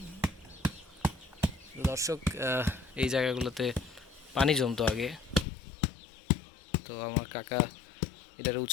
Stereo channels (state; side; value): drops out; right; at 5.5 s